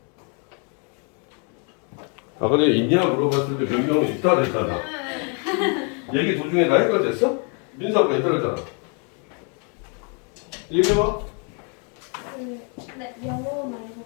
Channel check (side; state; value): right; quieter; 37.9 dB